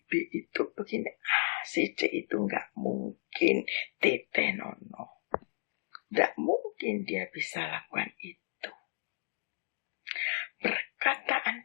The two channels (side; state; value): right; silent; digital silence